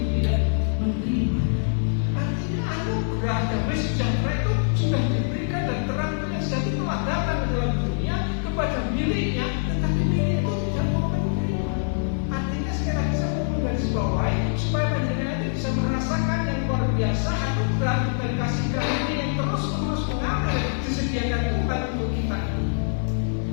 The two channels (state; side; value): silent; right; 58 dB below the other